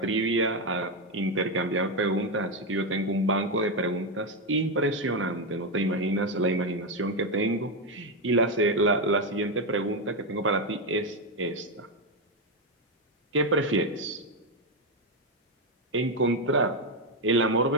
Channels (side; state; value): both; normal; correlation 0.06